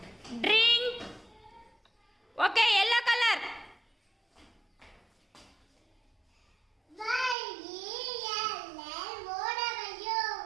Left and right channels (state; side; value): drops out; left; at 7.4 s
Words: drink. Okay, yellow colour.